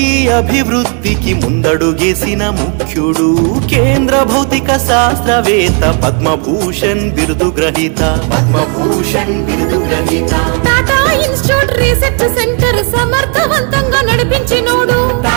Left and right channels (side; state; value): left; quieter; 39.9 dB